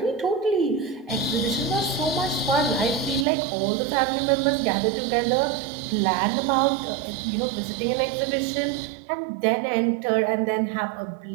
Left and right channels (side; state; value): left; drops out; at 3.2 s